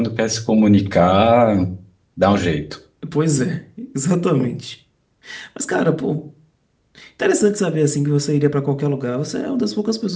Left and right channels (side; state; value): both; identical; correlation 1.00